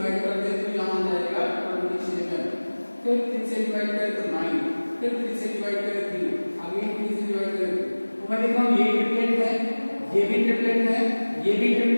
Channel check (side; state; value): both; inverted; correlation -1.00